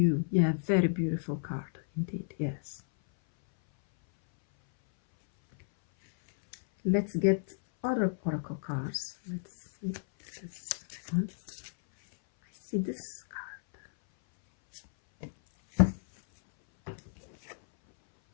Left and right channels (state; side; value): silent; right; 57 dB below the other